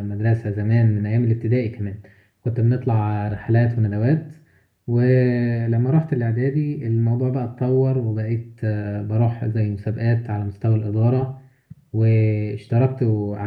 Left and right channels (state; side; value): identical; both; correlation 1.00